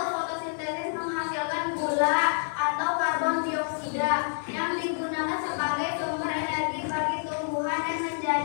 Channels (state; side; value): silent; right; digital silence